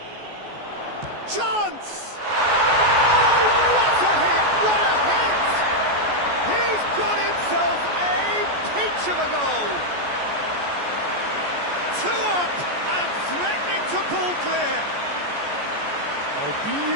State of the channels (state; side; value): late; left; 14 ms